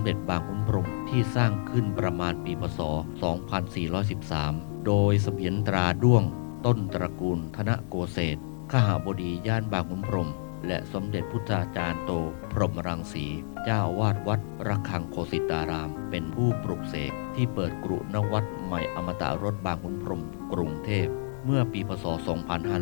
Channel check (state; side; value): silent; right; 59 dB below the other